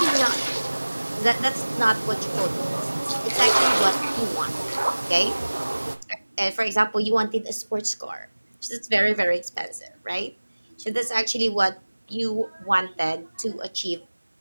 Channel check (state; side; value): inverted; both; correlation -1.00